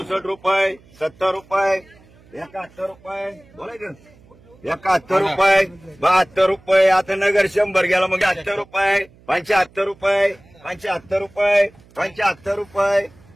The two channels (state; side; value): noise; right; hum, 27 dB below the sound